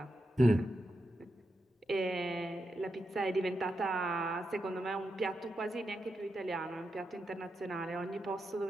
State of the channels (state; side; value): normal; both; correlation 0.86